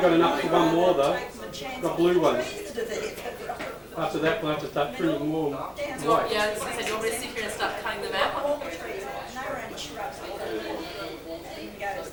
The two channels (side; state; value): both; identical; correlation 1.00